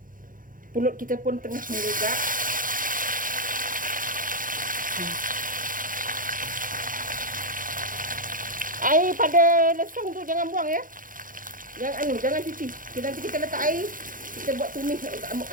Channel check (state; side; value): late; left; 0.40 ms